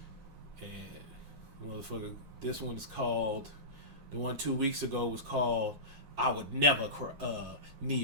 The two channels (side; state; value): left; late; 9.5 ms